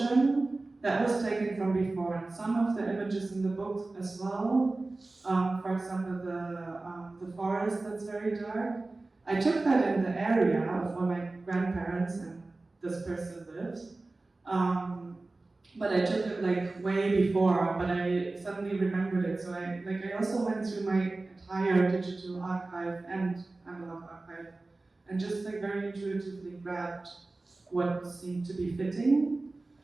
that was taken from before, and some of the images in the book as well. For example, the forest that's very dark. I took that in the area of where my grandparents and this person lives. But I took it way before, but I suddenly remembered it. So I also went through my entire digital archive and analog archive, and just very intuitively grabbed what seemed to be fitting.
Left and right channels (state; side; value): quieter; left; 3.2 dB